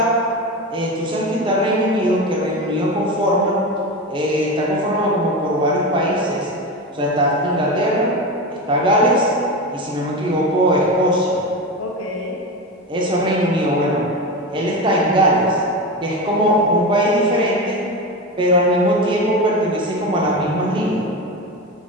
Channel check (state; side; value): normal; both; correlation 0.21